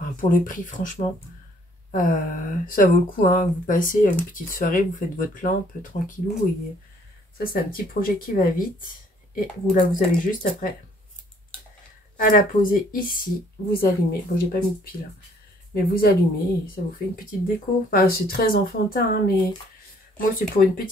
pour le prix, franchement, ça vaut le coup. Hein. Vous passez une petite soirée, vous faites votre lampe tranquillou. Et ça, c'est un petit projet qui va vite. Et vous, là, vous avez juste après à la poser ici. Vous allumez. Bon, j'ai pas mis de pile. Hein. Mais vous allumez et ça vous fait une petite déco. Enfin, c'est très enfantin, hein, mais moi, c'est pour une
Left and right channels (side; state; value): both; normal; correlation 0.61